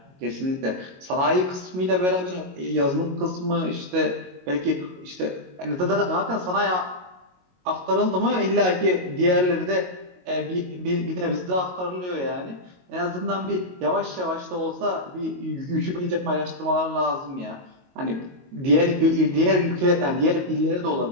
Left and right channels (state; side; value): late; left; 22 ms